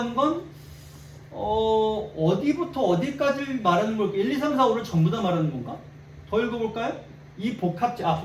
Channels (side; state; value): both; identical; correlation 1.00